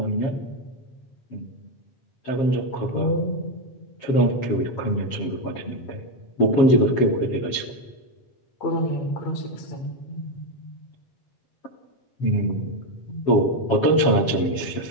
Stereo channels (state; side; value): late; right; 7.4 ms